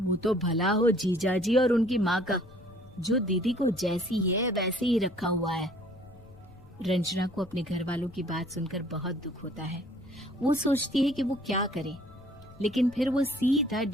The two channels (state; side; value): noise; left; rumble, 22 dB below the sound